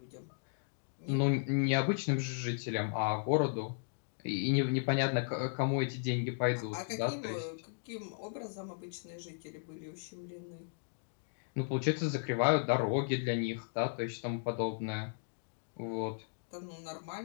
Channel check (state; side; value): silent; right; digital silence